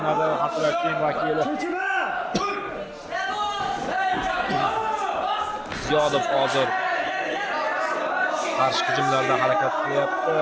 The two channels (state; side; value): identical; both; correlation 1.00